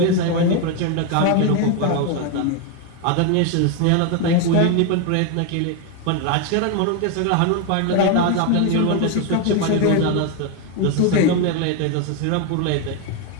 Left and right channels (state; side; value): different; both; correlation 0.01